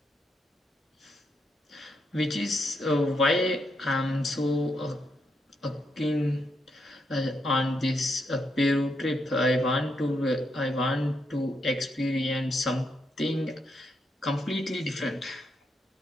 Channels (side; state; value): both; normal; correlation 0.80